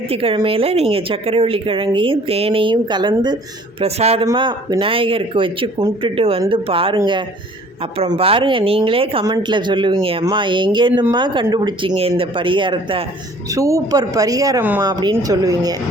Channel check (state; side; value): normal; both; correlation 0.53